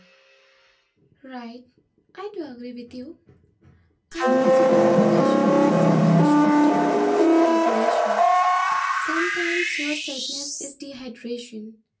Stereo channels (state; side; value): identical; both; correlation 1.00